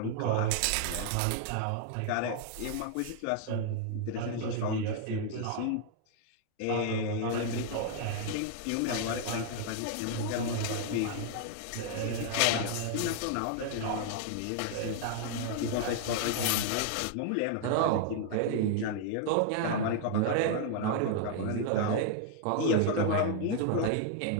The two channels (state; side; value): different; both; correlation -0.01